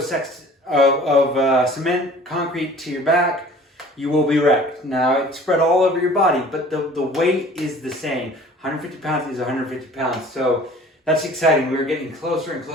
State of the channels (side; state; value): both; normal; correlation 0.47